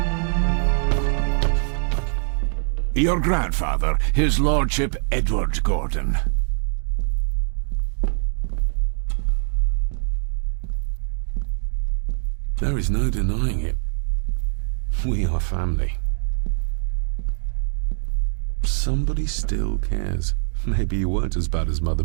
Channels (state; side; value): silent; left; digital silence